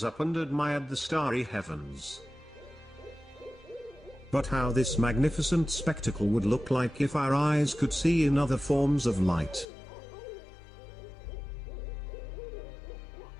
up and admired the starry heavens. But how this magnificent spectacle would look like if our eyes could see in other forms of light,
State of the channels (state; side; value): drops out; right; at 9.7 s